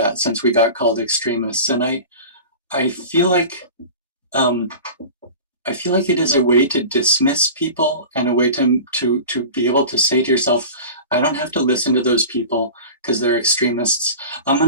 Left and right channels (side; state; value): both; inverted; correlation -0.35